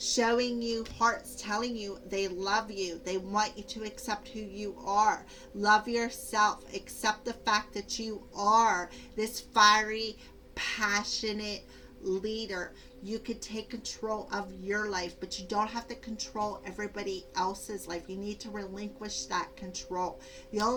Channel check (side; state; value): both; identical; correlation 1.00